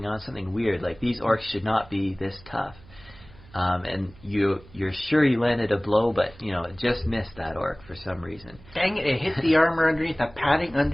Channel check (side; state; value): right; noise; hum, 23 dB below the sound